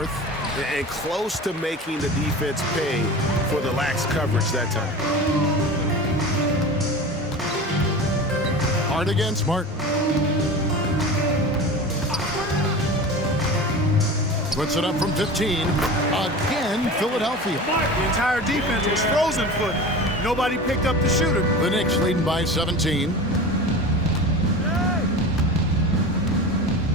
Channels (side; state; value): both; normal; correlation 0.32